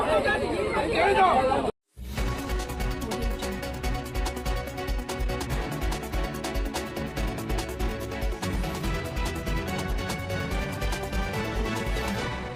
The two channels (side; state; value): both; identical; correlation 1.00